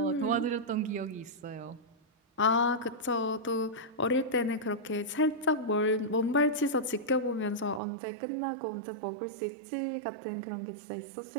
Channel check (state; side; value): drops out; left; at 7.8 s